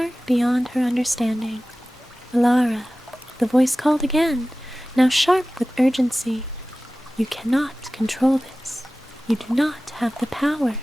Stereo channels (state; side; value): normal; both; correlation 0.97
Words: beyond her understanding. Elara, the voice called again, now sharp with urgency. You cannot control this. You do not have the power.